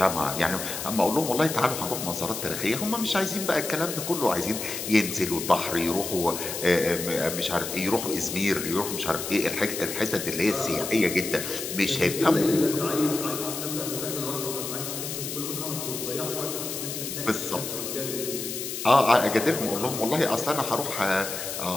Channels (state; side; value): noise; left; hiss, 6 dB below the sound